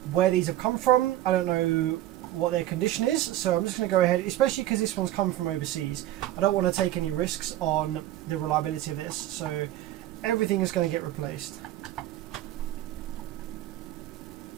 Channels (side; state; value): left; quieter; 14.0 dB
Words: where these have come from. I don't know what their condition is, so I'm just going to go ahead, especially because this one's come from overseas. I don't want to take any risks on the reliability of this, so everything is going to get replaced.